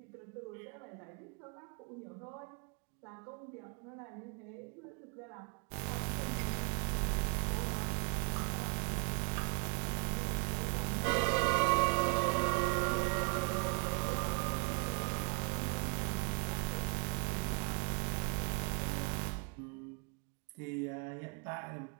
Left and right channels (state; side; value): quieter; left; 34.5 dB